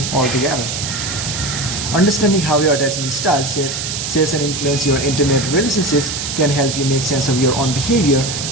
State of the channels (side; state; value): right; noise; hiss, 4 dB below the sound